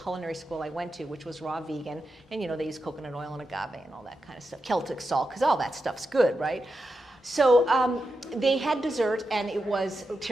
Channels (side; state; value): both; normal; correlation 0.88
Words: school I went to, which was raw vegan. And they use coconut oil and agave and all that kind of stuff. Celtic salt, because all that stuff's good, right? So they had dessert, and it was